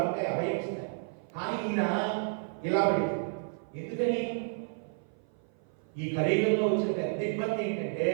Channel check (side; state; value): left; silent; 55 dB below the other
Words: ఉంటాయి, అభయం ఇస్తారు. కానీ ఈయన ఇలా పెడతాడు. ఎందుకని? ఈ కలియుగంలో వచ్చిన పెద్ద ఇబ్బంది ఏంటంటే